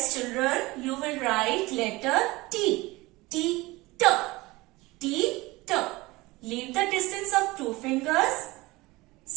children, you will write letter T. T. Leave the distance of 2 fingers.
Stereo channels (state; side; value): quieter; left; 21.3 dB